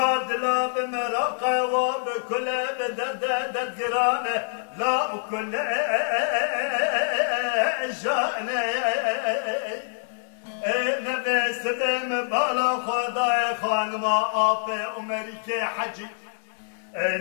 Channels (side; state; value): right; silent; digital silence